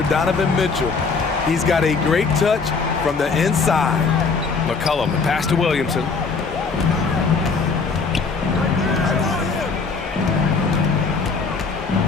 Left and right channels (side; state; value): right; quieter; 4.7 dB